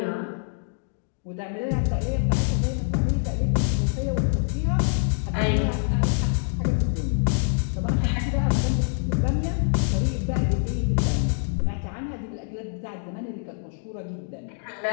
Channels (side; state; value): right; silent; digital silence